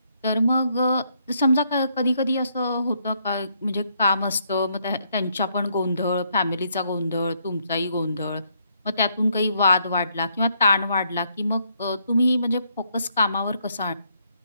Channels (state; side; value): inverted; both; correlation -0.73